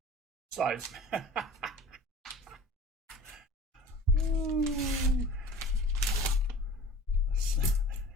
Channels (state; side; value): normal; both; correlation 0.41